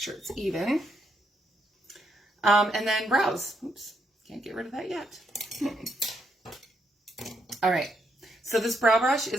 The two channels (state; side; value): normal; both; correlation 0.77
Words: it's even. And then brows. Oops, can't get rid of that yet. All right, so this brow brush